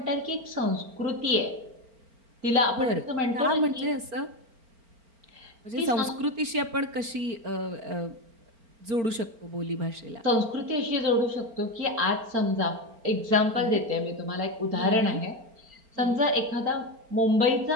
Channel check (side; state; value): left; late; 4.4 ms